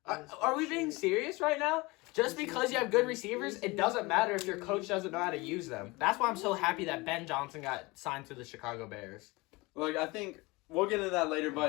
Are we being serious right now? Just because you have good receivers, it doesn't matter if your coach doesn't know how to use them. That's why I'm so happy that Ben Johnson got signed to the Chicago Bears. Look, I think we'll get into that later,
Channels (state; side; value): quieter; right; 23.8 dB